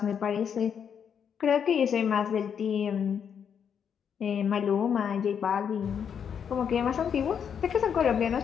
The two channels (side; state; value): right; quieter; 7.7 dB